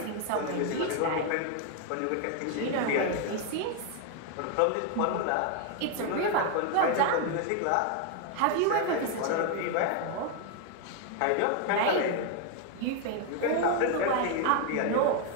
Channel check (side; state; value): both; different; correlation 0.01